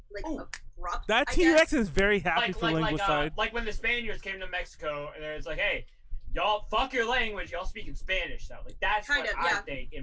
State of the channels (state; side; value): identical; both; correlation 1.00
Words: like abrupt. That T-Rex is very happy for linguicide. Like when the Spaniards came to Mexico and it's like, hey, y'all fuck your language, y'all speak in Spanish. So like that's kind of I think in